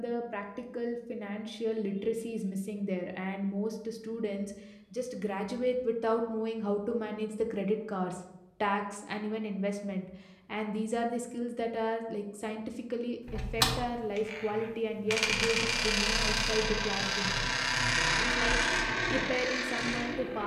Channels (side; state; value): both; identical; correlation 1.00